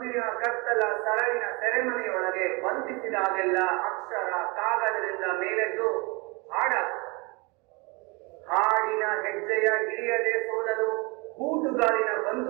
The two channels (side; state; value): left; quieter; 28.3 dB